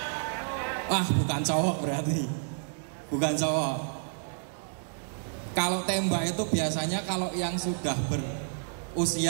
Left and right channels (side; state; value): left; silent; digital silence